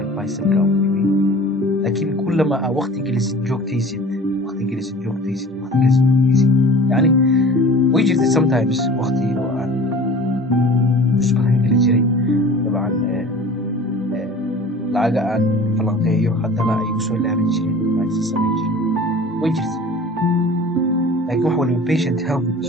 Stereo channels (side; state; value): both; normal; correlation 0.41